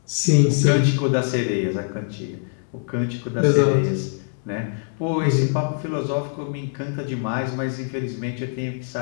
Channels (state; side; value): silent; right; digital silence